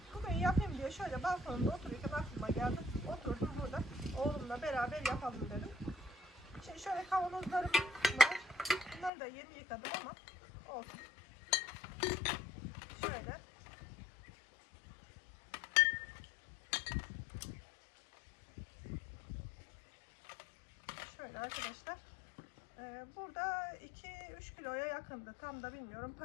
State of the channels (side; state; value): right; drops out; at 9.1 s